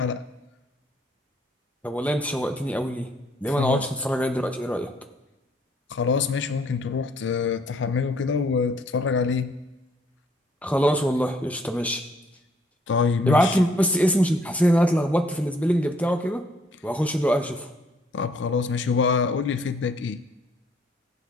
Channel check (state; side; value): normal; both; correlation 0.64